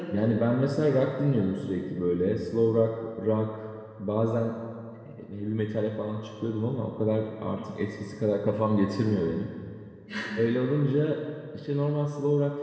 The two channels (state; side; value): identical; both; correlation 1.00